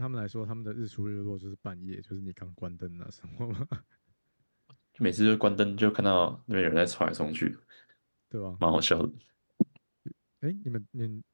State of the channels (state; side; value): inverted; both; correlation -1.00